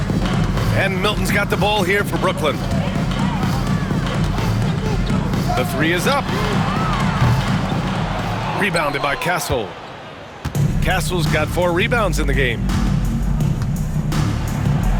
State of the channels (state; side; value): identical; both; correlation 1.00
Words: And Milton's got the ball here for Brooklyn. The 3 is up. Rebounded by Castle. Castle's got 4 rebounds in the game.